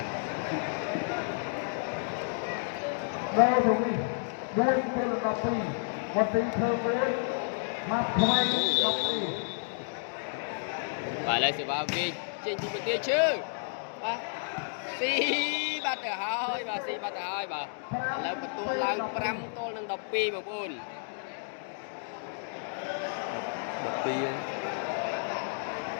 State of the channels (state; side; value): silent; right; digital silence